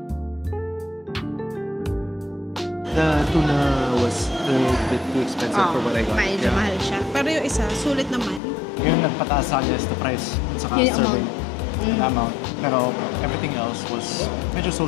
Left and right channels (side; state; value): right; drops out; at 8.4 s